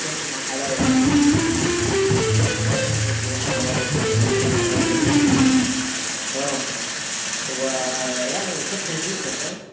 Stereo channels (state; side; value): identical; both; correlation 1.00